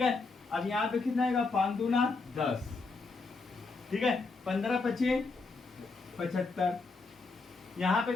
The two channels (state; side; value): quieter; right; 3.9 dB